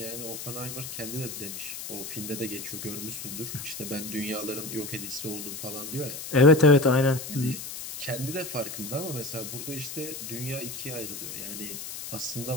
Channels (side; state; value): left; noise; hiss, 8 dB below the sound